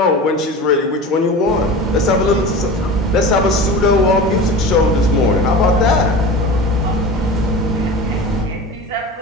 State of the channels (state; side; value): normal; both; correlation 0.33